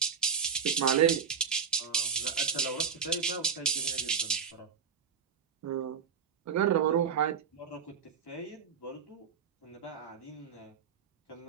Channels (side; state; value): left; quieter; 6.8 dB